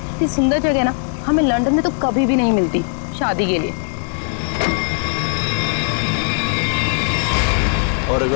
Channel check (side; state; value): right; silent; 57 dB below the other